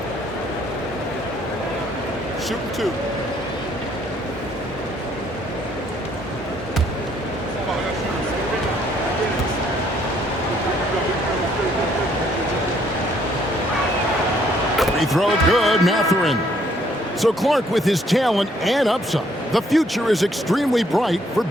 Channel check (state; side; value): normal; both; correlation 0.66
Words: Shooting 2. Free throw good, Mathurin. So Clark, with his talent and upside, the future is extremely bright for